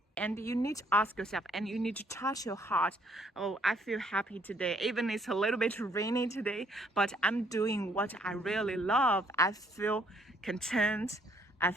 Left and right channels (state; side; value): normal; both; correlation 0.66